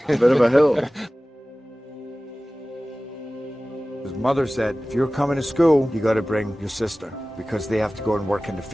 A bit of a hill. His mother said, if you're coming to school, you got to bring your sister because they have to go and work in the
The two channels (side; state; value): both; normal; correlation 0.97